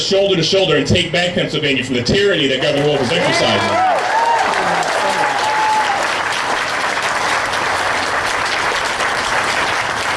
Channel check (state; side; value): identical; both; correlation 1.00